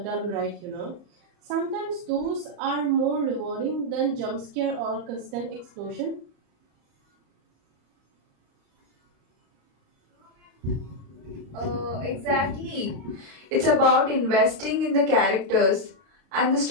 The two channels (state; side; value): late; left; 34 ms